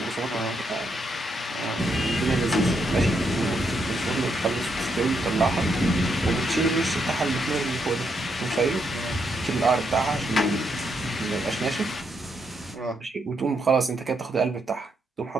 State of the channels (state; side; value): normal; both; correlation 0.78